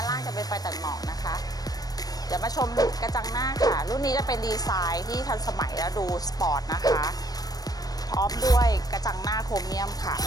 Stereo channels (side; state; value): right; late; 0.19 ms